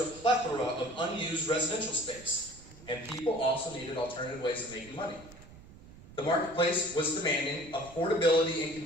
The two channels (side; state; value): right; noise; rumble, 19 dB below the sound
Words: a plethora of unused residential space. And people also needed alternative ways of making money. The marketplace was demanding affordability and